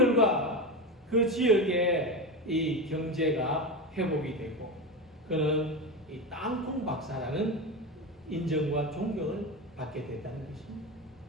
그 지역의 이 경제가 회복이 되고 그는 이 땅콩 박사라는 인정과 존경을 받게 됐다는 것입니다.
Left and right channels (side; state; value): both; normal; correlation 0.19